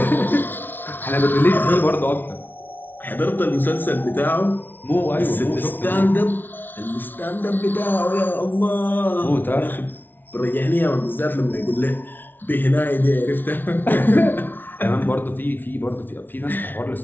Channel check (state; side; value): late; right; 0.091 ms